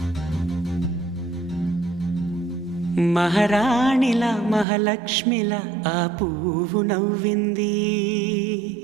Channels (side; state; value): left; drops out; at 4.7 s